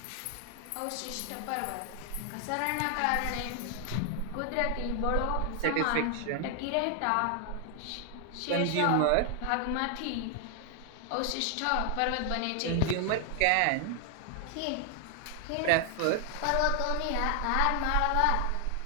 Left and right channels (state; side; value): different; both; correlation 0.00